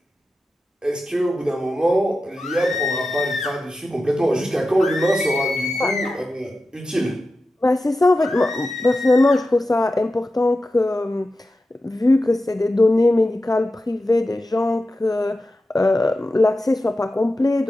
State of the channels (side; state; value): both; normal; correlation 0.92